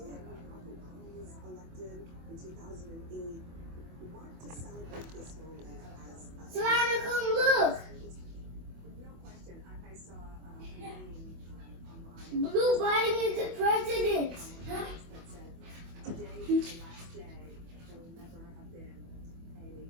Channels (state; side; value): late; left; 24 ms